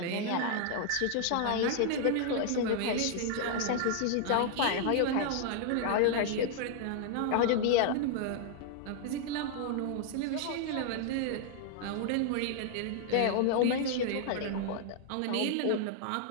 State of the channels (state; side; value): different; both; correlation -0.01